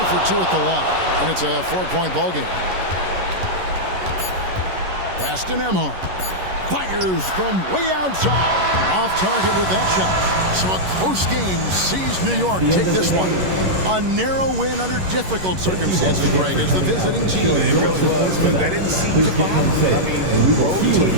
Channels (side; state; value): left; late; 11 ms